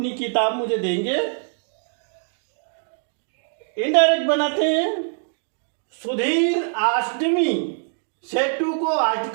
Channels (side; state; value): left; silent; 63 dB below the other